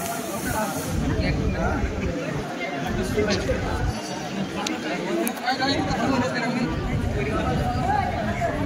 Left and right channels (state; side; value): identical; both; correlation 1.00